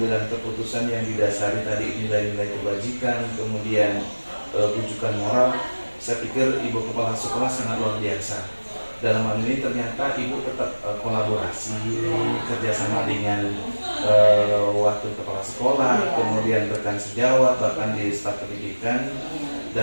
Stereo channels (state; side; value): inverted; both; correlation -1.00